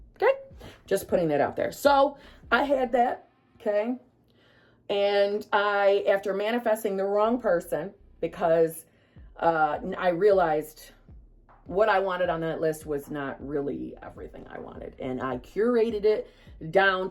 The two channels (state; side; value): identical; both; correlation 1.00